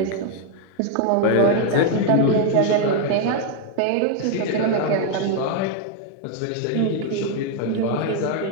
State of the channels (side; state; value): both; different; correlation 0.00